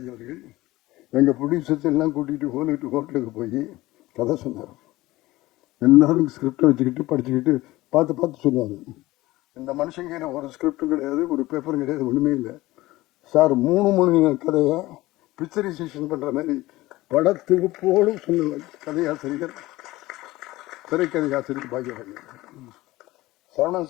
அவர்கள் எங்கள் ப்ரொடியூசர்ஸ் எல்லாம் கூட்டிகிட்டு ஹோட்டலுக்கு போய் கதை சொன்னார். எல்லாரும் ஸ்கிரிப்டை வச்சுக்கிட்டு படிச்சுக்கிட்டு பார்த்து சொல்லுவாங்க. இந்த மனுஷங்க ஒரு ஸ்கிரிப்டும் கிடையாது, ஒரு பேப்பரும் கிடையாது, ஒன்றுமே இல்லை சார். 3 மணி கதையை பிக்சரைசேஷன் பண்ணுற மாதிரி படத்தொகுப்போடு சொன்ன கதையாசிரியர், திரைக்கதை ஆசிரியர் பாக்யராஜ். சரவணன்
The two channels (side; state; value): right; quieter; 18.5 dB